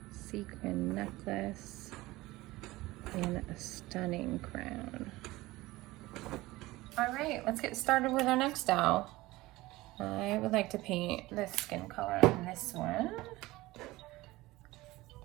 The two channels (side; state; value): left; quieter; 19.2 dB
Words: sequin necklace, and a stunning crown. All right, let's get started with our next doll. I would like to paint the skin color on this one.